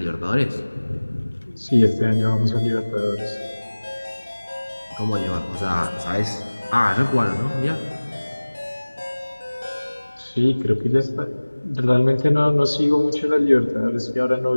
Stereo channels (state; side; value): inverted; both; correlation -1.00